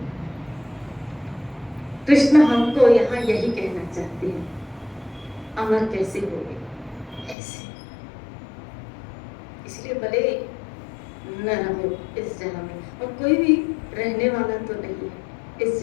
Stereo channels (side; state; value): right; drops out; at 7.4 s